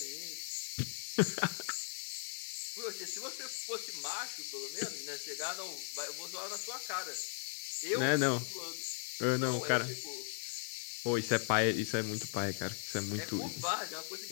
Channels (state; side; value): silent; right; digital silence